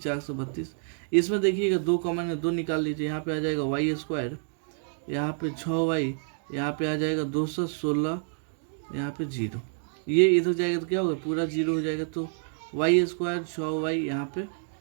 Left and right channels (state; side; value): silent; left; 59 dB below the other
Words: इसमें देखिएगा 2 कॉमन है, 2 निकाल लीजिए, यहाँ पे आ जाएगा वाई स्क्वायर, यहाँ पे 6 वाई, यहाँ पे आ जाएगा 216, यहाँ पे 0, ये इधर जाएगा तो क्या होगा, पूरा 0 हो जाएगा। तो वाई स्क्वायर 6 वाई, यहाँ पे